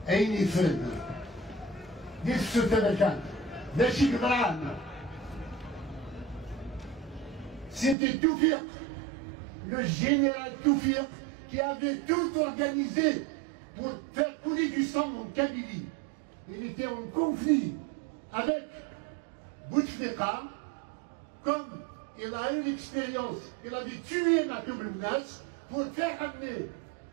أين يفرد ديك السلطة كانت ماشي قدران. C'était Toufik, le général Toufik, qui avait tout organisé pour faire couler du sang en Kabylie. Il était en conflit avec Bouteflika, comme il a eu l'expérience, il avait tué Matoub Mnas pour faire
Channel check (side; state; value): left; drops out; at 8.0 s